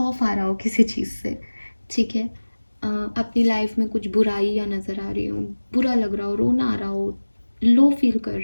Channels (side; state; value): both; inverted; correlation -1.00